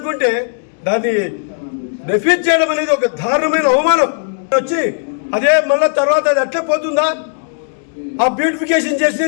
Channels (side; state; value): right; silent; 69 dB below the other